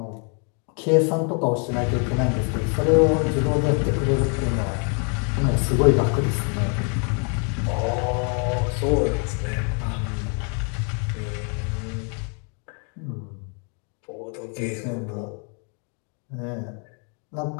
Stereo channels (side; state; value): right; quieter; 39.5 dB